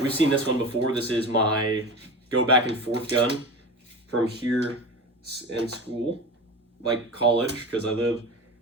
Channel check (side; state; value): both; normal; correlation 0.29